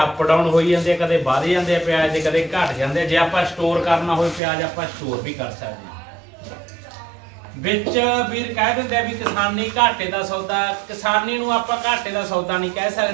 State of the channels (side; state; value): left; drops out; at 4.4 s